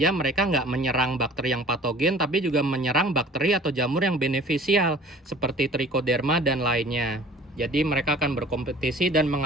mereka nggak menyerang bakteri yang patogen tapi juga menyerang bakteri atau jamur yang beneficial seperti Trichoderma dan lainnya. Jadi mereka akan berkompetisi dan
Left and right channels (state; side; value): normal; both; correlation 0.47